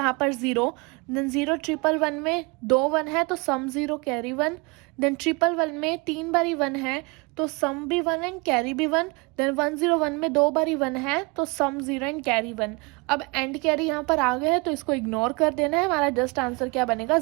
पर 0, देन 0 1 में 2 1 है तो सम 0 कैरी 1, देन 1 में 3 बारी 1 है तो सम भी 1 एंड कैरी भी 1, देन 1 0 1 में 2 बारी 1 है तो सम 0 एंड कैरी 1। अब एंड कैरी यहाँ पर आ गए हैं तो इसको इग्नोर कर देना है, हमारा जस्ट आंसर क्या बनेगा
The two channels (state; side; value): quieter; left; 28.3 dB